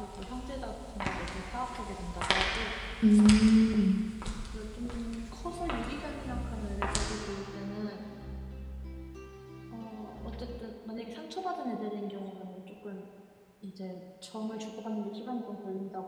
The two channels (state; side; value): identical; both; correlation 1.00